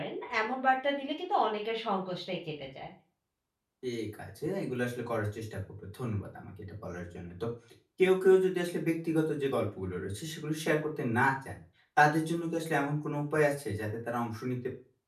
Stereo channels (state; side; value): identical; both; correlation 1.00